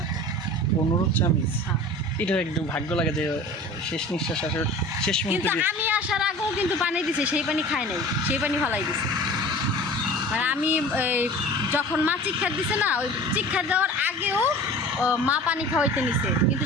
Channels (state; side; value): normal; both; correlation 0.40